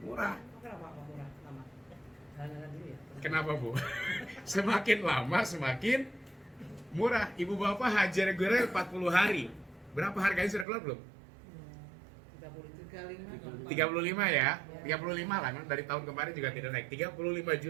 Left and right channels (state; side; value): drops out; left; at 10.7 s